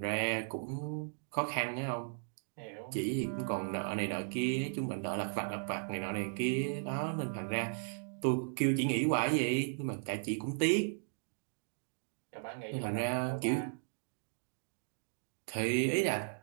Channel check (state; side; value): silent; left; digital silence